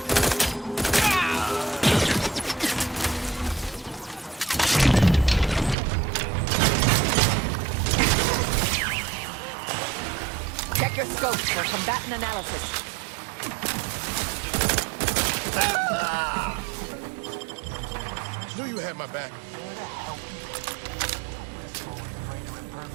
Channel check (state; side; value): drops out; left; at 5.8 s